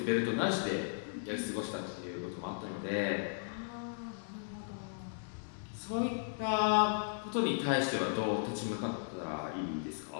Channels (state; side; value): silent; right; digital silence